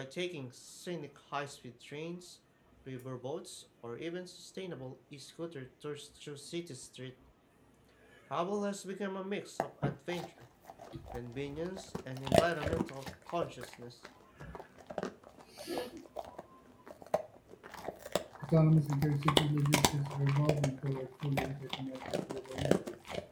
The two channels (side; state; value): both; identical; correlation 1.00